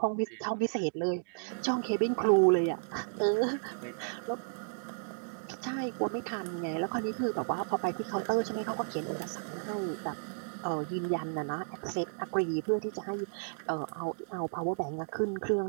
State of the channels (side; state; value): left; silent; digital silence